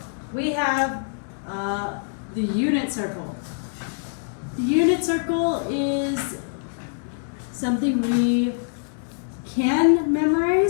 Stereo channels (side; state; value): right; silent; 62 dB below the other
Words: we have the unit circle. The unit circle is something we can